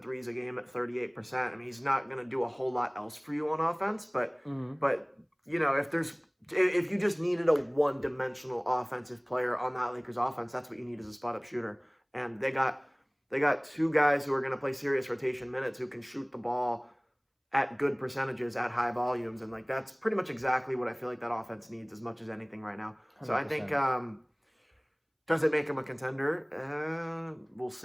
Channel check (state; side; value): identical; both; correlation 1.00